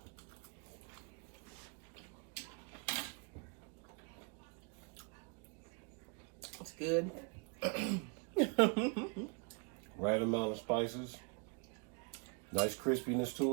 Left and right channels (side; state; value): left; quieter; 36.5 dB